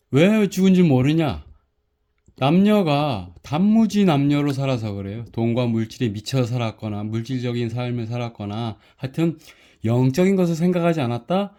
왜 죽은 줄 모르냐? 남녀가 단무지 남녀로 살아서 그래요. 돈과 물질에 미쳐 살았거나 물질적인 삶을 살았거나 하여튼 영적인 것을 생각하지 않았다.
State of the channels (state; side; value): identical; both; correlation 1.00